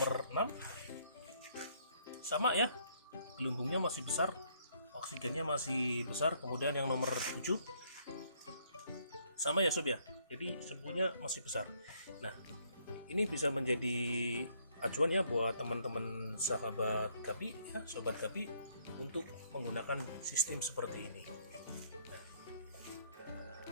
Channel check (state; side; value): inverted; both; correlation -0.67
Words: 6 sama ya, gelembungnya masih besar, oksigennya masih besar. Kemudian yang nomor 7 sama ya Sob ya, jadi semuanya masih besar. Nah, ini bisa menjadi acuan ya buat teman-teman sahabat Gapi ya, Sobat Gapi, untuk menggunakan sistem seperti ini.